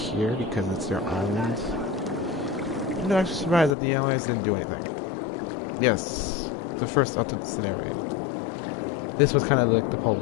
because it's their island. I'm not actually surprised that the Allies didn't do anything. Yes, the first ultimate scenario. This was kind of like the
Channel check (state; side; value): drops out; right; at 3.8 s